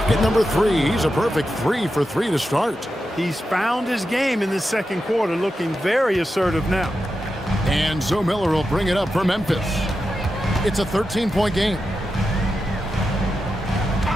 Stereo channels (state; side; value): normal; both; correlation 0.89